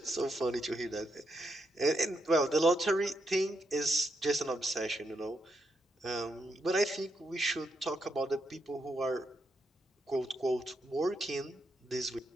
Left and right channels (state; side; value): normal; both; correlation 0.81